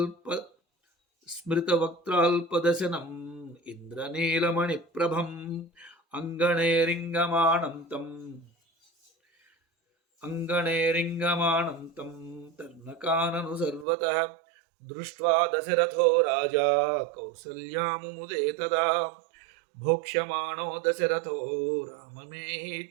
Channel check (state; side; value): drops out; left; at 13.9 s